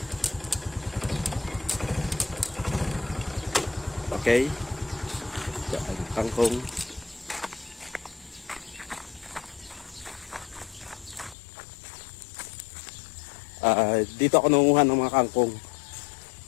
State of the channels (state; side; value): drops out; right; at 11.4 s